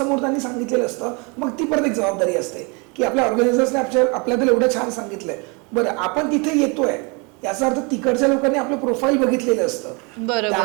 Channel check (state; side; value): quieter; left; 31.3 dB